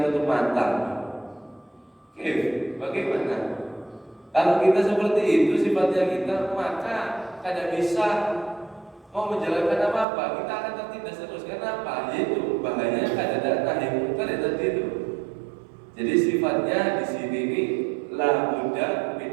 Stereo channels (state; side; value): drops out; left; at 10.1 s